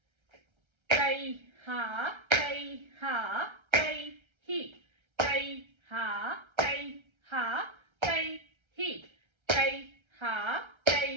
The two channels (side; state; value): left; late; 1.3 ms